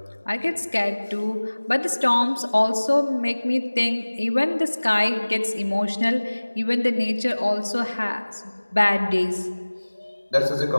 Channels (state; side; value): inverted; both; correlation -1.00